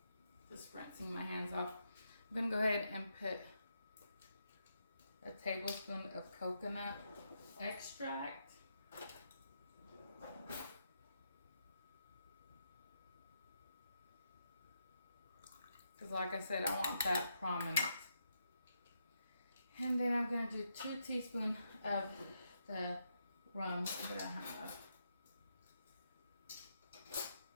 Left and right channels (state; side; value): inverted; both; correlation -0.81